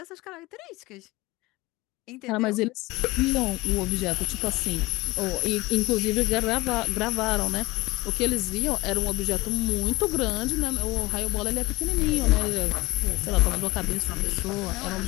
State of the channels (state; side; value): quieter; right; 20.9 dB